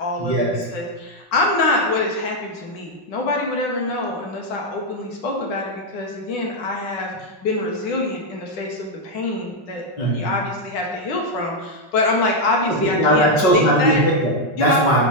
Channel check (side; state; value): right; late; 5.4 ms